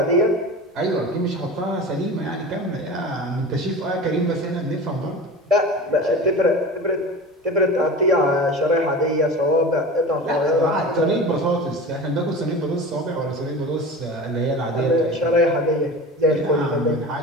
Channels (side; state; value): both; normal; correlation 0.33